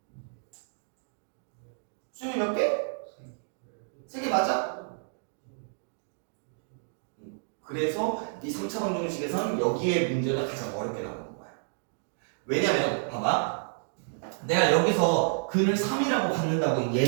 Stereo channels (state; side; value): silent; left; digital silence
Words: 수영이 몇 개? 3개 맞아? 그래서 이 3차 방정식에서는 여기에 문제가 가장 어렵게 나오는 거야. 왜냐면 봐봐. 내가 여기서 근을 3이라고 갖는다고